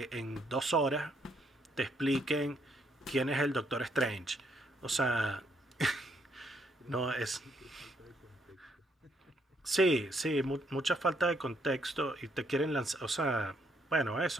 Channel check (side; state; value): both; normal; correlation 0.72